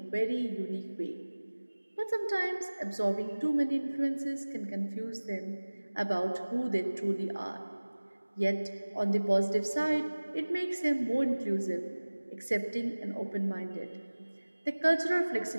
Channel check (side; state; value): both; inverted; correlation -1.00